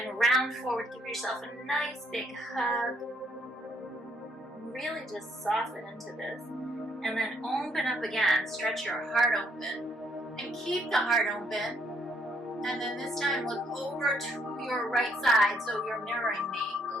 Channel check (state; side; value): normal; both; correlation 0.70